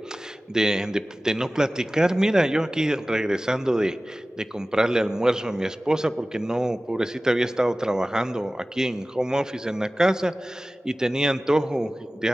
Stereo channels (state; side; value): normal; both; correlation 0.97